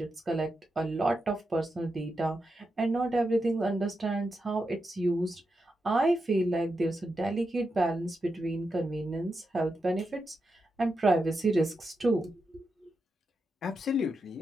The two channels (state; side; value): normal; both; correlation 0.87